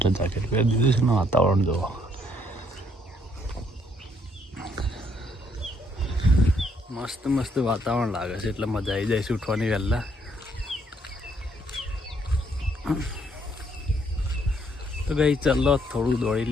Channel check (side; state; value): both; normal; correlation 0.69